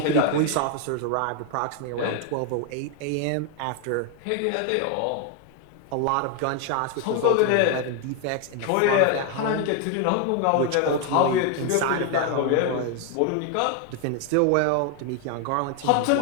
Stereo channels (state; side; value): different; both; correlation 0.01